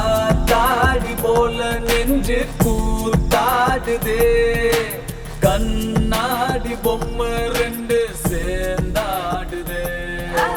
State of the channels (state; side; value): identical; both; correlation 1.00